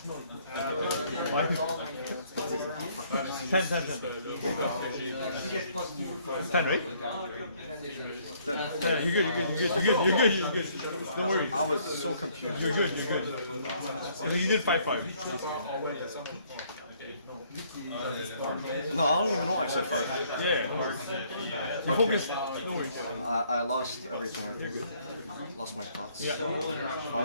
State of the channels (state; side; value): inverted; both; correlation -0.64